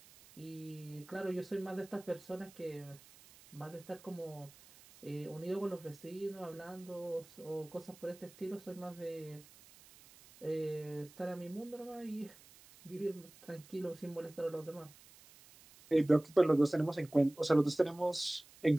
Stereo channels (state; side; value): noise; right; hiss, 22 dB below the sound